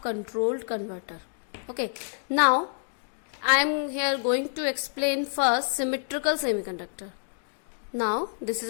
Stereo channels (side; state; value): right; silent; digital silence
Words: controlled converter. Okay, now I am here going to explain first symmetrical semiconductor. Now this is